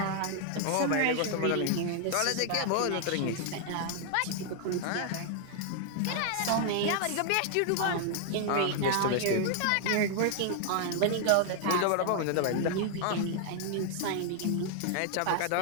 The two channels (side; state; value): both; different; correlation 0.00